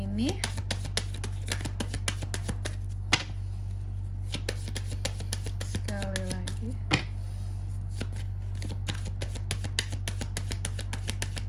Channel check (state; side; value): identical; both; correlation 1.00